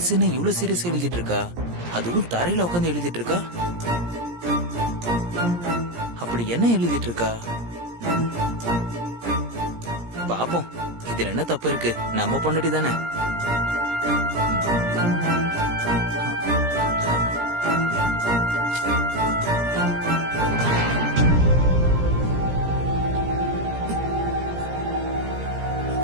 என்ன இவ்வளவு serious எழுதிட்டு இருக்கா? அதுவும் தரையில உட்காந்து எழுதிட்டு இருக்கா. அப்படி என்ன எழுதிட்டு இருக்கா? பாப்போம், இதுல என்ன தப்பு இருக்கு? நம்ம பொண்டாட்டி தானே.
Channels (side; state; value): left; late; 17 ms